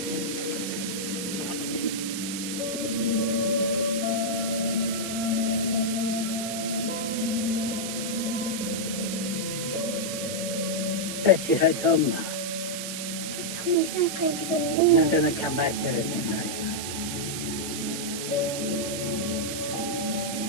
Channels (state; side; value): noise; right; hiss, 5 dB below the sound